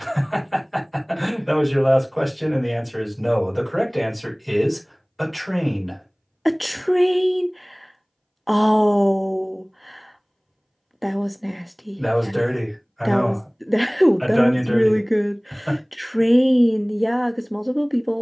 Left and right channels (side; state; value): both; identical; correlation 1.00